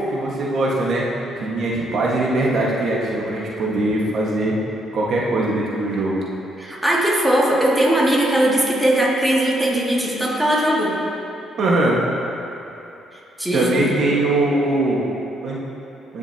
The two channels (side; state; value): both; normal; correlation 0.74